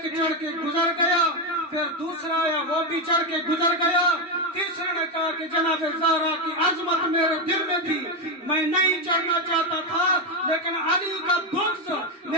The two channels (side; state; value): both; normal; correlation 0.08